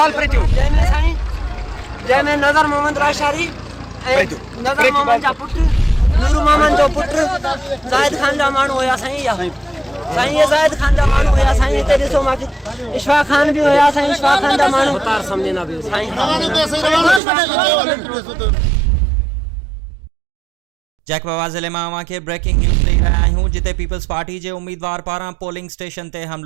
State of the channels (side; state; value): left; drops out; at 17.2 s